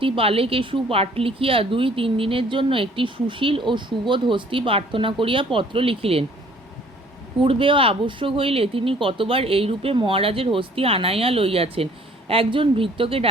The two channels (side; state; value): both; normal; correlation 0.56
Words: পাঠ লিখিয়া 2-3 দিনের জন্য একটি সুশীল ও সুবোধ হস্তি প্রার্থনা করিয়া পত্র লিখিলেন। পূর্বেও আবশ্যক হইলে তিনি কতবার এইরূপে মহারাজের হস্তি আনাইয়া লইয়াছেন। একজন ভৃত্যকে